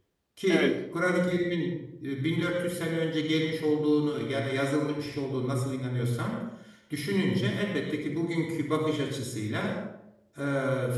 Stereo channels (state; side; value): identical; both; correlation 1.00